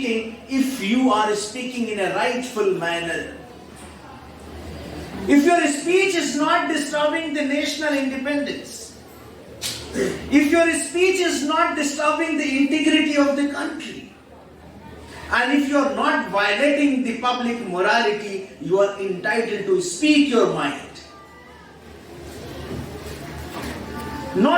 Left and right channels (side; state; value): both; identical; correlation 1.00